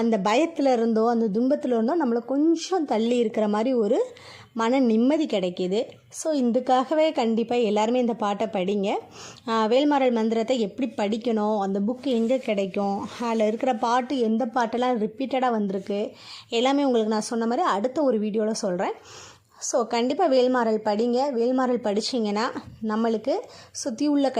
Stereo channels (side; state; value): both; identical; correlation 1.00